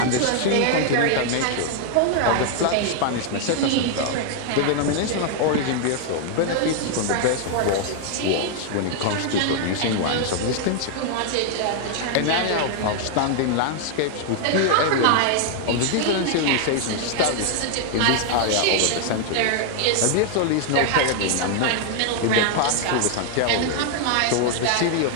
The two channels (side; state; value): both; different; correlation 0.00